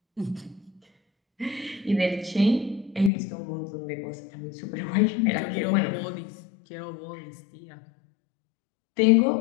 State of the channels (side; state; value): right; drops out; at 3.1 s